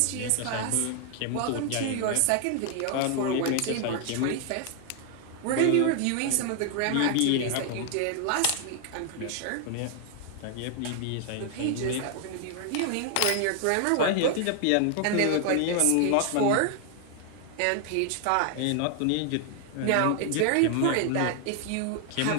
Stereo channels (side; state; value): both; different; correlation 0.00